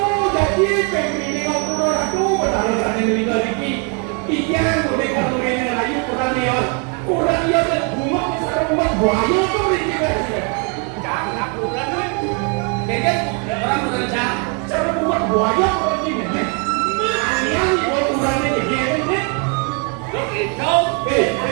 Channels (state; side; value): quieter; left; 36.6 dB